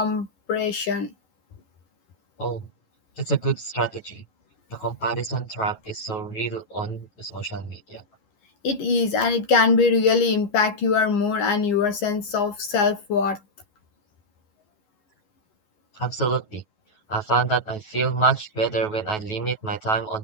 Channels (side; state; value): right; late; 11 ms